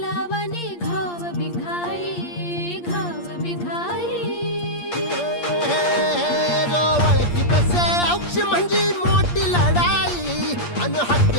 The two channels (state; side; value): late; right; 8.5 ms